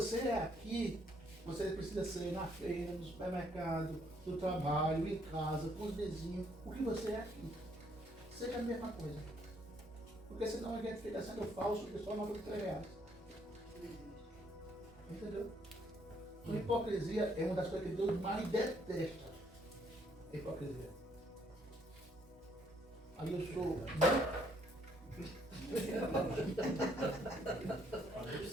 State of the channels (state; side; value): normal; both; correlation 0.68